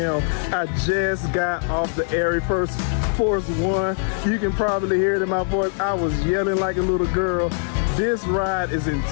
I just got off the Arie Force 1. You can probably hear it in my voice. I was yelling like a little girl. This ride is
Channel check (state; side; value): silent; right; 60 dB below the other